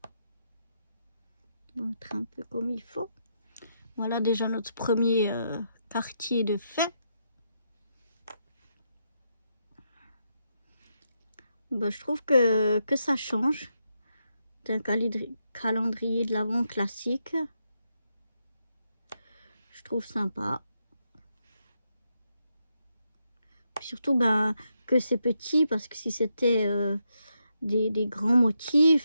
On va mettre un peu comme il faut. Voilà déjà notre premier quartier de fait. bah, je trouve que ça change d'un calendrier de l'Avent classique. Je trouve sympa. Surtout bah, que c'est petit, parce que si c'était des grands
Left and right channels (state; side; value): inverted; both; correlation -0.81